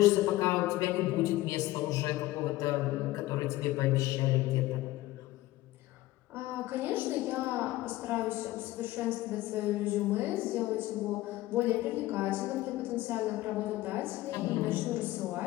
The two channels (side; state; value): right; quieter; 17.1 dB